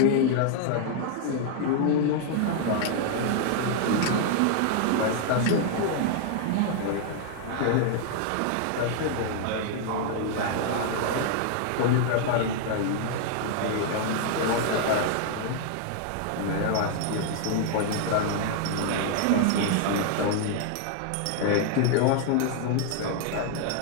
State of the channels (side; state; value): both; different; correlation 0.00